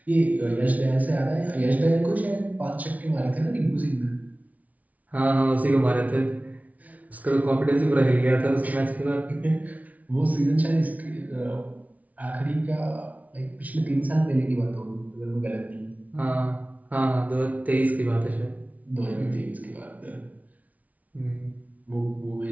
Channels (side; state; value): left; late; 0.072 ms